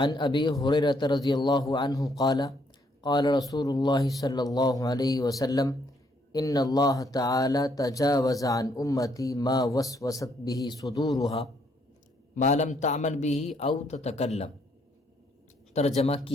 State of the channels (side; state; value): both; normal; correlation 0.70